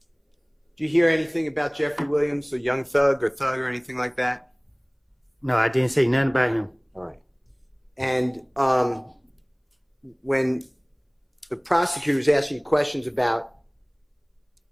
Did you hear anything about Jeffery Williams, a young thug or anything like that? No, I didn't say nothing about him. All right. And when the prosecutor was asking you questions about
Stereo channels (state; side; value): identical; both; correlation 1.00